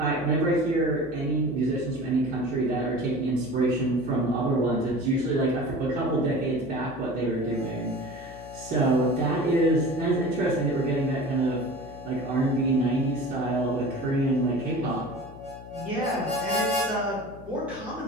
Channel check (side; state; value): left; noise; hum, 16 dB below the sound